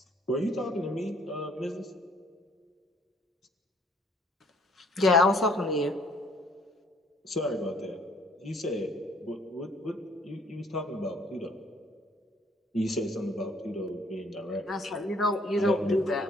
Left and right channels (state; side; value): normal; both; correlation 0.61